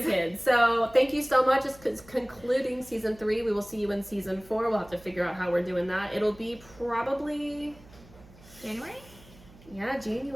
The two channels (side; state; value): right; noise; hum, 23 dB below the sound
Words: kids. So thank you so much. It's concluding season 3. We will see you in season 4. We'll have to figure out how we're doing that. It'll be probably January? Yeah,